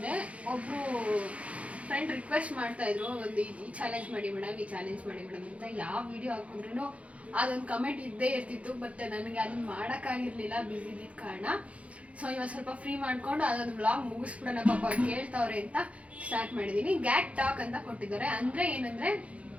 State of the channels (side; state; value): left; late; 0.064 ms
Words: ಒಬ್ಬರು ಫ್ರೆಂಡ್ ರಿಕ್ವೆಸ್ಟ್ ಮಾಡ್ತಾಯಿದ್ರು, ಒಂದು ಈ ಚಾಲೆಂಜ್ ಮಾಡಿ ಮೇಡಮ್, ಈ ಚಾಲೆಂಜ್ ಮಾಡಿ ಮೇಡಮ್ ಅಂತ. ಯಾವ ವಿಡಿಯೋ ಹಾಕಿದ್ರೂ ಅದೊಂದು ಕಮೆಂಟ್ ಇದ್ದೇ ಇರ್ತಿತ್ತು. ಬಟ್ ನನಗೆ ಅದನ್ನು ಮಾಡೋಕ್ಕಾಗಿರಲಿಲ್ಲ, ಬ್ಯುಸಿ ಇದ್ದಿದ್ದ ಕಾರಣ. ಸೊ ಇವಾಗ ಸ್ವಲ್ಪ ಫ್ರೀ ಮಾಡ್ಕೊಂಡು ಅದೊಂದು ವ್ಲಾಗ್ ಮುಗಿಸ್ಬಿಡೋಣ, ಪಾಪ ಕೇಳ್ತಾವ್ರೆ ಅಂತ ಸ್ಟಾರ್ಟ್ ಮಾಡಿದ್ದೀನಿ. ಗ್ಯಾಟ್ ಟಾಕ್ ಅಂತ ಕೊಟ್ಟಿದ್ದಾರೆ. ಅಂದರೆ ಏನಂದರೆ,